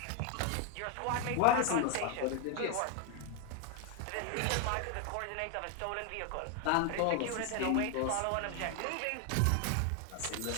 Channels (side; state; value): both; different; correlation 0.01